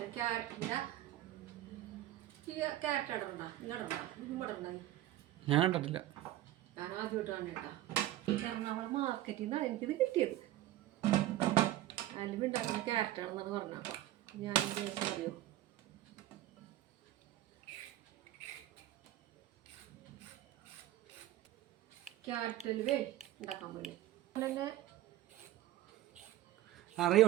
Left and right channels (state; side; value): quieter; left; 14.5 dB